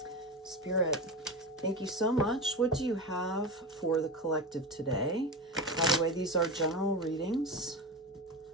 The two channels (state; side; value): normal; both; correlation 0.22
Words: Spirit, thank you so much. What do you have for the collective today? By the way, these are general readings